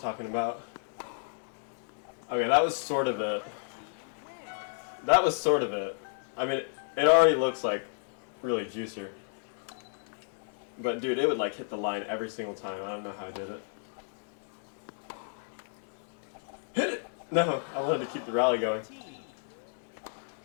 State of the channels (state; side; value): silent; right; digital silence